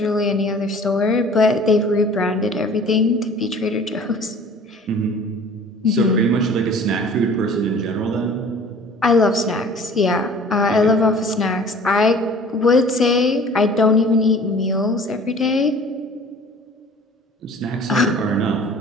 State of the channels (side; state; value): both; normal; correlation 0.48